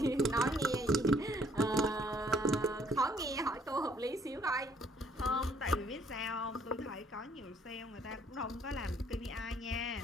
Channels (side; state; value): both; normal; correlation 0.63